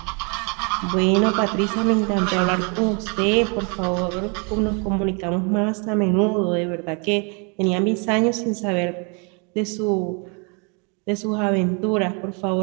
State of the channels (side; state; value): left; quieter; 34.4 dB